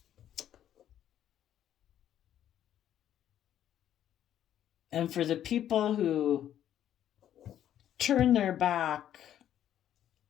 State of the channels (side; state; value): right; quieter; 10.9 dB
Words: And for the people who turn their back